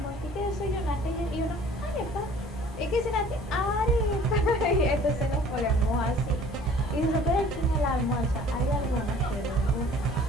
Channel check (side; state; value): both; normal; correlation 0.51